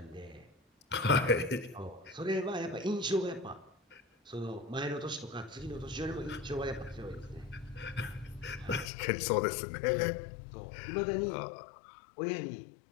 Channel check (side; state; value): right; drops out; at 8.9 s